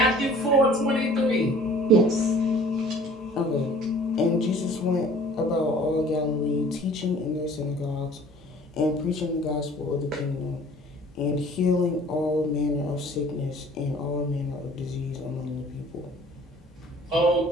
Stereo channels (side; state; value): both; normal; correlation 0.50